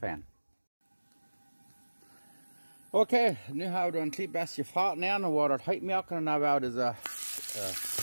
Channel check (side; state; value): both; inverted; correlation -1.00